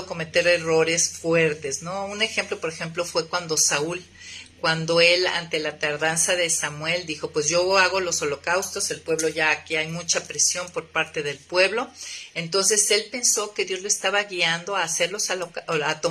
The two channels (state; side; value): identical; both; correlation 1.00